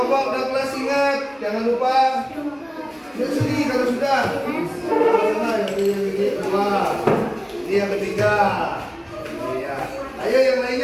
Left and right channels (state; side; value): identical; both; correlation 1.00